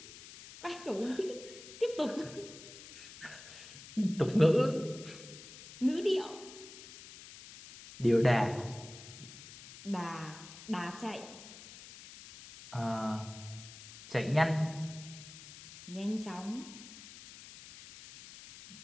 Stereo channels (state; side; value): noise; left; hiss, 16 dB below the sound